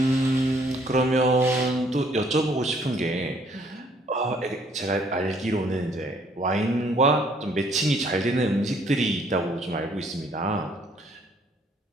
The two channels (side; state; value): both; normal; correlation 0.63